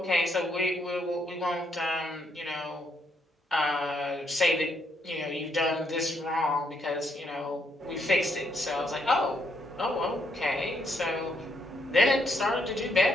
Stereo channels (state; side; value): normal; both; correlation 0.75